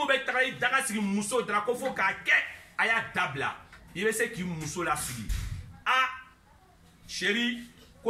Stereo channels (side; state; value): both; identical; correlation 1.00